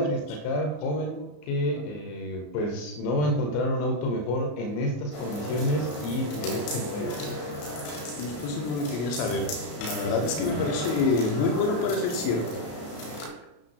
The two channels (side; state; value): right; late; 34 ms